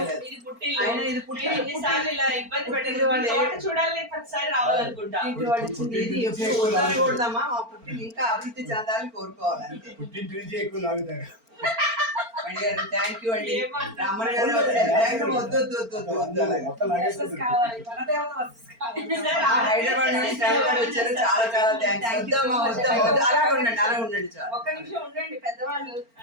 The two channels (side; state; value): left; late; 4.4 ms